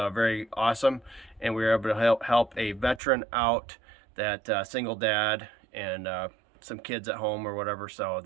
awesome. And we were able to help a veteran out, that single dad, and some kids at home or whatever. So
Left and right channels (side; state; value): left; drops out; at 3.0 s